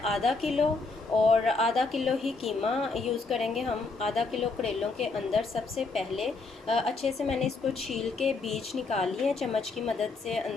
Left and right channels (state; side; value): quieter; right; 3.9 dB